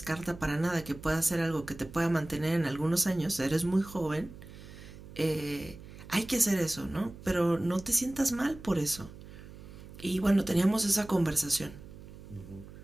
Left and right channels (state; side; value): noise; right; hum, 16 dB below the sound